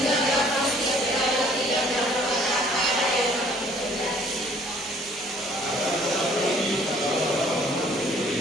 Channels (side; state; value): both; normal; correlation 0.57